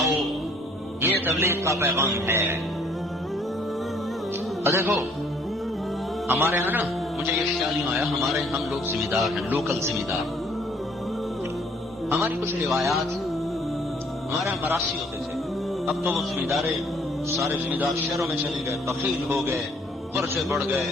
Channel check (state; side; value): normal; both; correlation 0.61